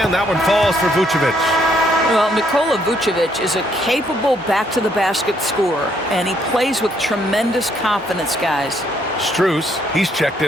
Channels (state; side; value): normal; both; correlation 0.70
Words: And that one falls for Vucevic. Well, Nikola Vucevic is a capable back-to-the-basket scorer, and he plays with tremendous confidence, guys. Strus, he's checked